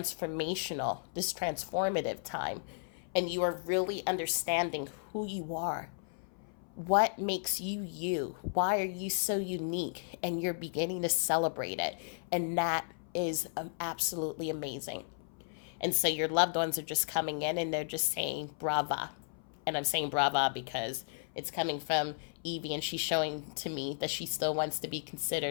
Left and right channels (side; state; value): right; silent; 55 dB below the other